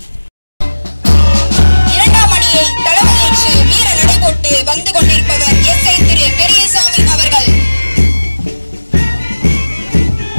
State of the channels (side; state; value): both; inverted; correlation -1.00